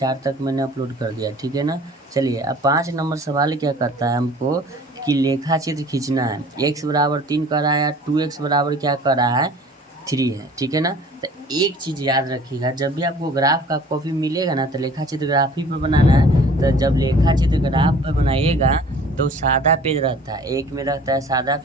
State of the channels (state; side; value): normal; both; correlation 0.49